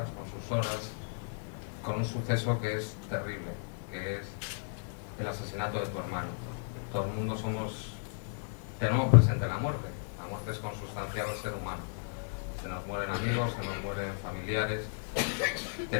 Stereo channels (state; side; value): silent; right; digital silence